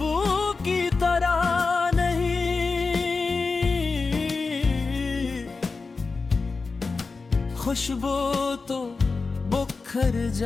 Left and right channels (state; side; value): quieter; right; 4.2 dB